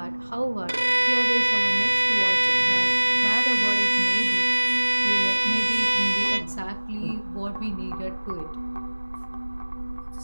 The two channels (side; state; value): both; inverted; correlation -1.00